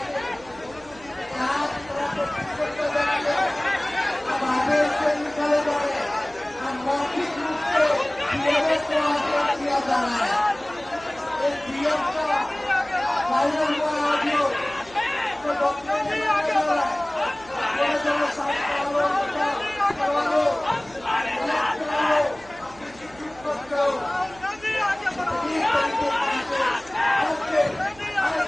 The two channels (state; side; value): noise; right; hum, 23 dB below the sound